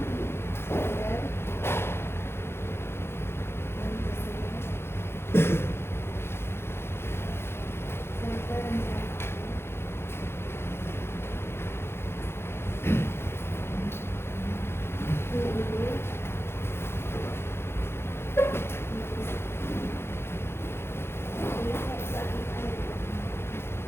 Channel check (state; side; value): late; right; 0.12 ms